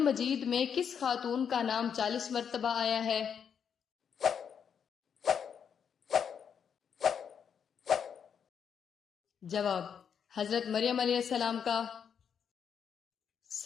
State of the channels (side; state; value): right; quieter; 7.5 dB